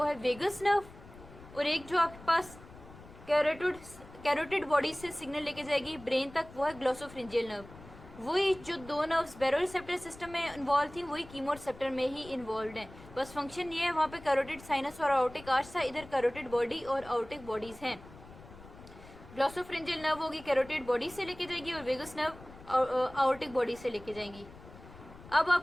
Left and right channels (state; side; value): noise; left; rumble, 18 dB below the sound